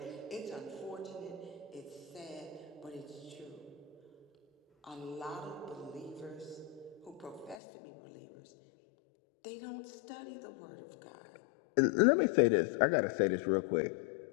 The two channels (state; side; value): drops out; right; at 7.6 s